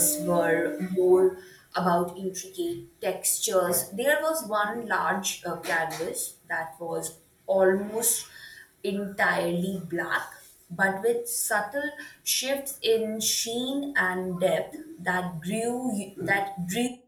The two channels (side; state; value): both; identical; correlation 1.00